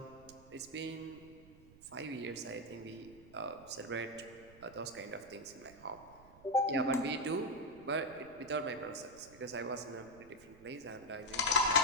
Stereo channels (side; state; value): right; noise; rumble, 22 dB below the sound